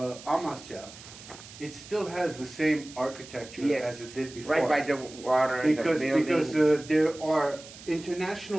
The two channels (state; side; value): noise; right; hiss, 17 dB below the sound